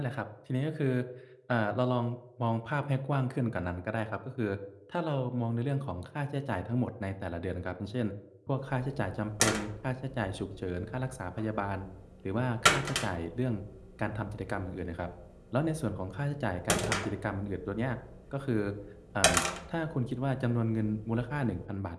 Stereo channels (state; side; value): identical; both; correlation 1.00